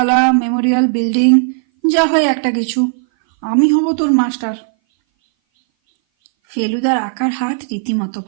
মেমোরিয়াল, বিল্ডিং, যা হয় একটা কিছু। আমি হব তোর মাস্টার। ফেলুদার আঁকার হাত রীতিমতো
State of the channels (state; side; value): silent; left; 60 dB below the other